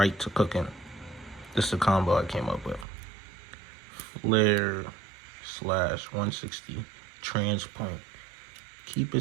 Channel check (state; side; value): drops out; left; at 2.9 s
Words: to cooking. This is the combo I came up with. Flare / 160 Transpoint. Keep